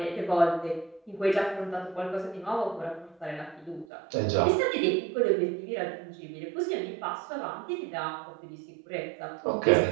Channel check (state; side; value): drops out; left; at 3.9 s